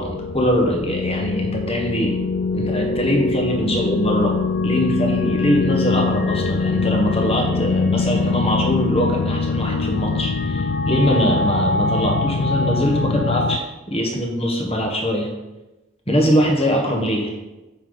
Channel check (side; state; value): both; normal; correlation 0.51